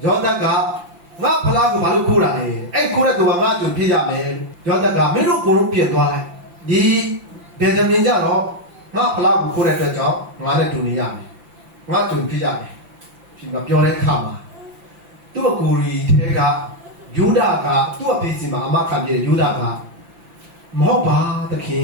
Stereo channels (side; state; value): left; late; 5.8 ms